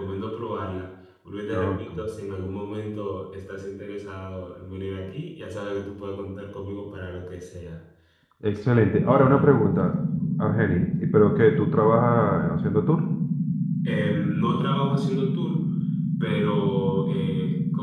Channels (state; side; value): identical; both; correlation 1.00